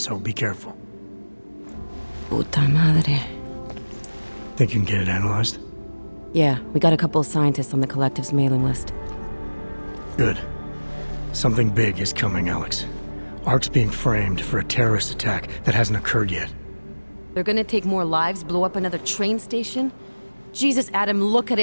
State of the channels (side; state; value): both; inverted; correlation -1.00